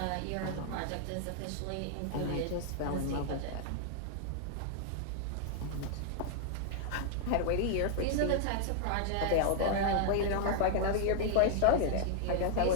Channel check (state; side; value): different; both; correlation 0.00